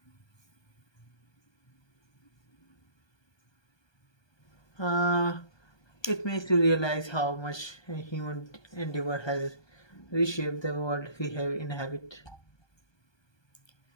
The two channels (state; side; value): late; right; 1.2 ms